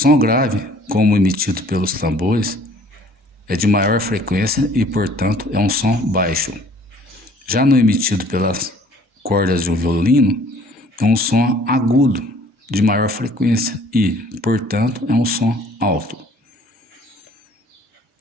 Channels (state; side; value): normal; both; correlation 0.55